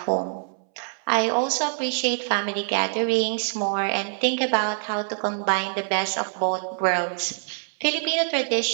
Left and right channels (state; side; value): silent; left; 62 dB below the other